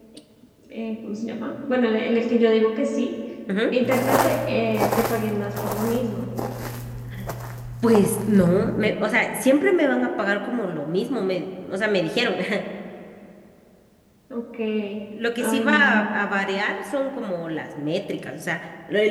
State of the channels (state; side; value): identical; both; correlation 1.00